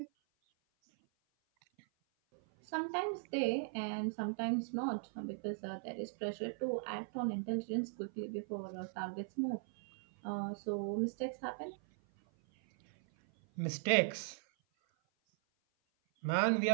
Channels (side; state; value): left; silent; 52 dB below the other